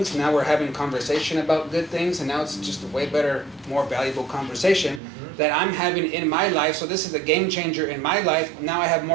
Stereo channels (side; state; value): left; drops out; at 5.0 s